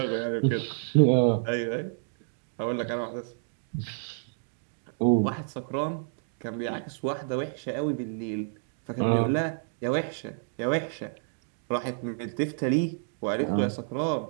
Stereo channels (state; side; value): silent; left; digital silence